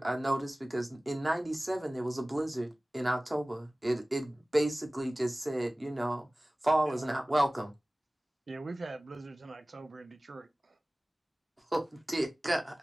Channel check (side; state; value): both; normal; correlation 0.98